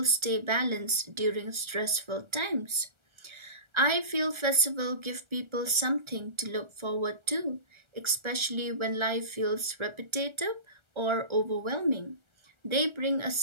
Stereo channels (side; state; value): left; late; 1.3 ms